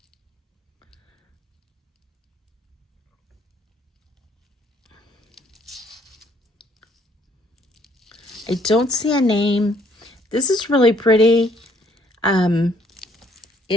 I don't see a name. This is really pretty.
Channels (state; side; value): normal; both; correlation 0.64